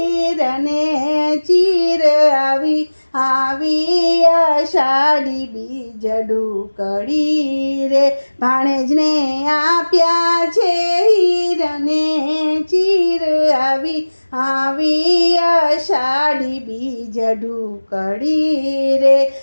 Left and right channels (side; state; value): both; inverted; correlation -1.00